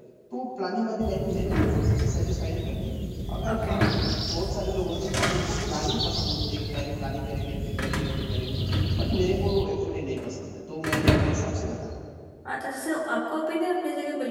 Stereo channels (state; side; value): identical; both; correlation 1.00